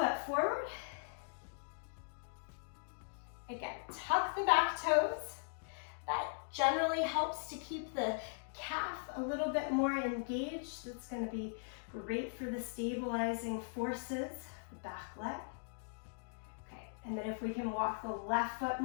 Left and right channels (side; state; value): right; silent; digital silence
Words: forward. Again, tuck the back toes. That generally helps to keep the calf a little bit more engaged. That's going to be great for the stabilizing forces, the back leg. Okay, and then if we can walk the left foot